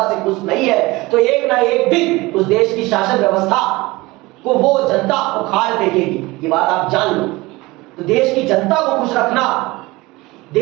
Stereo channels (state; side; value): quieter; left; 21.5 dB